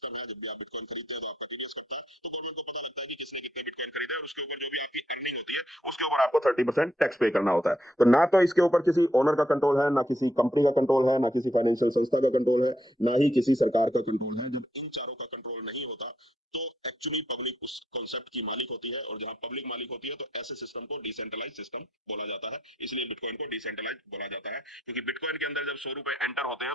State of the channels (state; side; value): normal; both; correlation 0.75